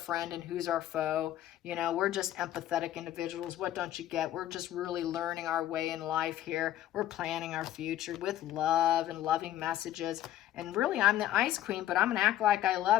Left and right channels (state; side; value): quieter; right; 12.9 dB